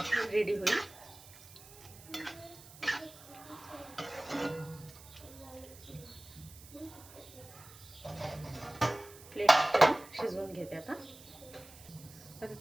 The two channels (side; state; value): right; noise; hiss, 19 dB below the sound